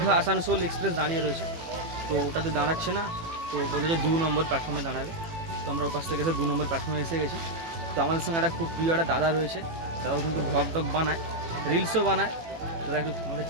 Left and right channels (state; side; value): late; left; 18 ms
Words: আসানসোল এক্সপ্রেস দাঁড়িয়ে রয়েছে, তো ওটাতে দাঁড়াচ্ছে না। তো বলে যে 2 নম্বর প্ল্যাটফর্মে দাঁড়াবে। তো আমরা ওপাশ থেকে এসে 2 নম্বর প্ল্যাটফর্মে এসে গেছি। তো আমাদের সঙ্গে একটা খুব প্রিয় একটা দাদা রয়েছে, তারাও কিন্তু ব্লগ টগ বানায়, রিলসও বানায়। তারা একটু আমাদের